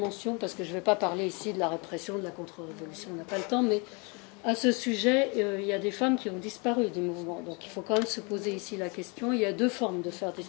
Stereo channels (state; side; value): quieter; right; 31.4 dB